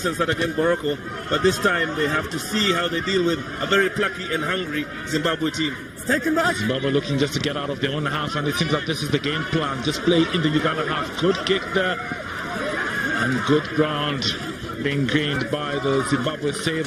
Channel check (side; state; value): both; identical; correlation 1.00